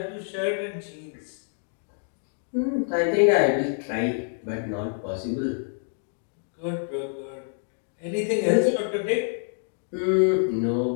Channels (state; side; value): silent; right; 60 dB below the other